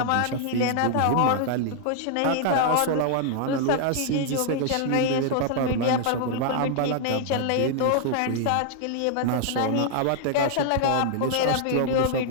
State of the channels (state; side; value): different; both; correlation -0.01